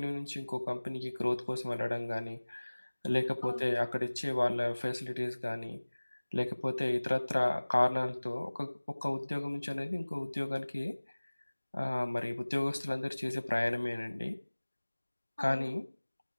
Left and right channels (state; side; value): inverted; both; correlation -1.00